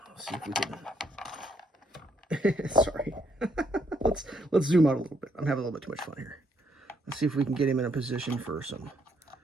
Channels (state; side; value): normal; both; correlation 0.72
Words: Let's see if we can sorry. let's zoom out a little bit. I'm having a little bit too much fun here. Let's see if we can get him in a position for some